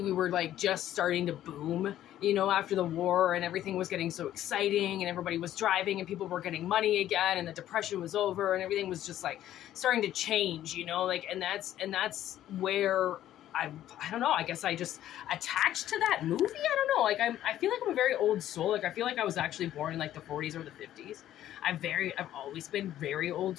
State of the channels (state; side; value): quieter; right; 12.4 dB